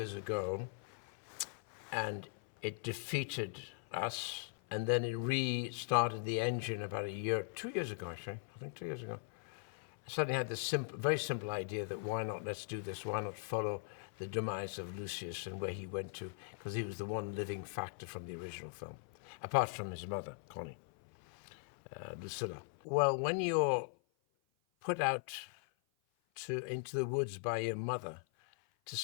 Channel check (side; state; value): right; silent; 51 dB below the other